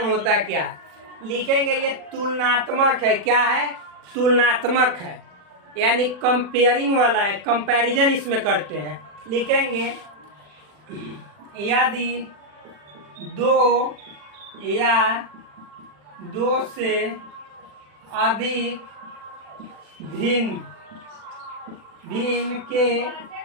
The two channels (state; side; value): late; left; 40 ms